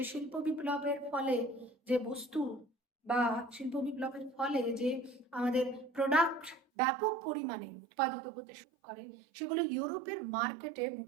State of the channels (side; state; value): left; drops out; at 6.6 s